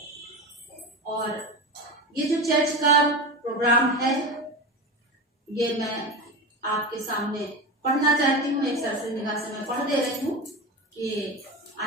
और ये जो चर्च का प्रोग्राम है, ये मैं आपके सामने पढ़ना चाहती हूँ। एक सरसरी निगाह से मैं पढ़ दे रही हूँ कि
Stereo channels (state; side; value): normal; both; correlation 0.24